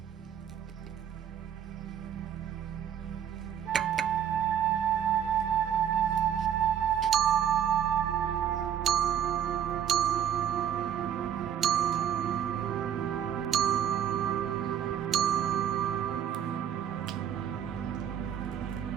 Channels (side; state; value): left; quieter; 9.4 dB